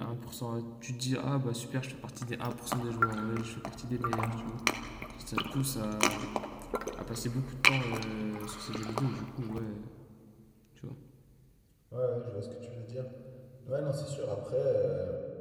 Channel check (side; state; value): both; identical; correlation 1.00